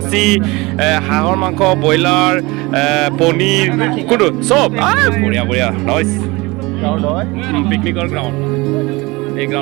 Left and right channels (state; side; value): quieter; left; 23.4 dB